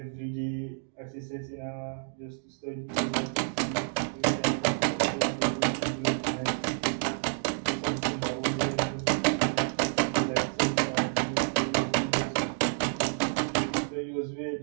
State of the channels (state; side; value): silent; left; digital silence